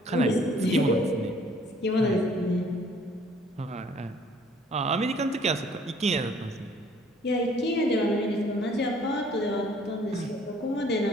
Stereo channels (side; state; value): both; normal; correlation 0.58